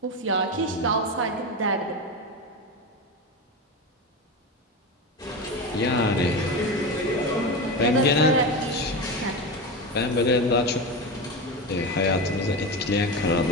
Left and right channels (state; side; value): normal; both; correlation 0.20